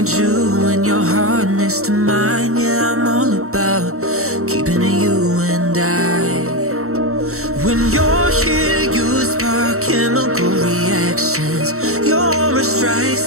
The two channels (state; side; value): late; left; 0.64 ms